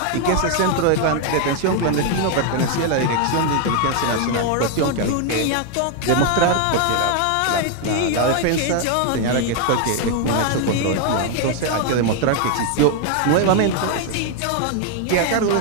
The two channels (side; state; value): both; different; correlation 0.00